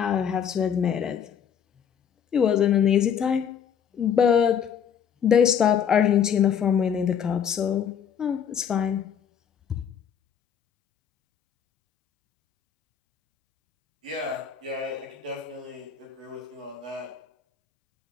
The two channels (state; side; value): quieter; right; 8.0 dB